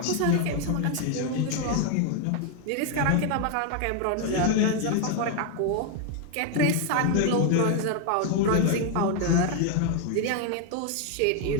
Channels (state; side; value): different; both; correlation 0.01